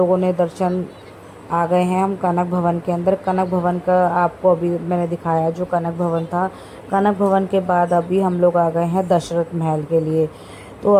ने दर्शन आ गए हैं हम कनक भवन के अंदर। कनक भवन का आपको अभी मैंने दिखाया जो कनक भवन था। कनक भवन के बाद अभी हम लोग आ गए हैं दशरथ महल के लिए। तो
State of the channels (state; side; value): identical; both; correlation 1.00